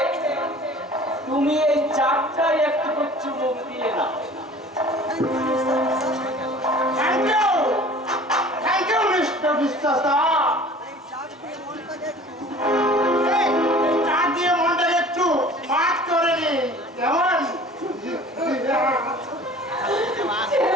তুমি এই চারটায় একটু চুমুক দিয়ে না। থ্যাংক ইউ মিস্টার বিশ্বাস। থ্যাংক ইউ মিস্টার বিশ্বাস দা। এই চাপ দিয়ে মনটাকে একটু এই চার দিয়ে মনটাকে একটু মাছ করে নি কেমন?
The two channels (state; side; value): normal; both; correlation 0.46